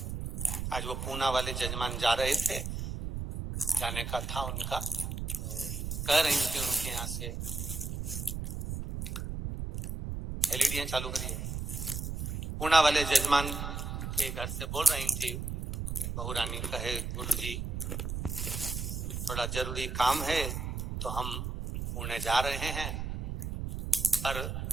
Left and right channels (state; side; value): noise; right; rumble, 4 dB below the sound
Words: आज वो पूना वाले जजमान जा रहे थे, जाने का था उनका, कह रही थी उनके यहाँ से एलईडी चालू करिए। पूना वाले जजमान के घर से बोल रही थी, बहू रानी कहे गुरु जी थोड़ा जरूरी काम है तो हम पुणे जा रहे हैं, पर